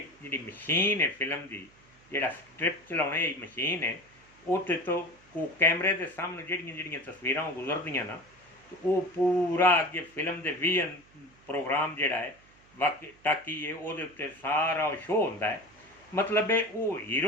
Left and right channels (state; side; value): noise; right; hum, 29 dB below the sound